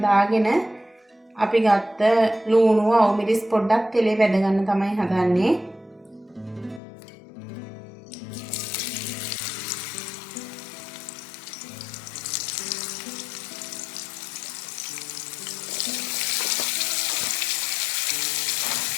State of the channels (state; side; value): drops out; right; at 6.8 s